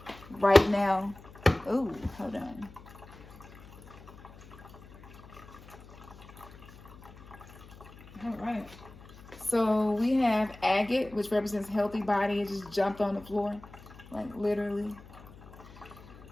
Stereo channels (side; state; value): left; noise; hum, 20 dB below the sound